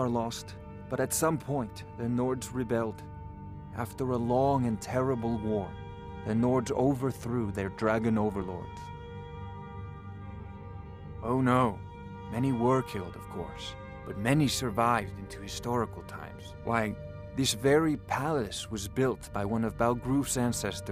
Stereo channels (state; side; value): identical; both; correlation 1.00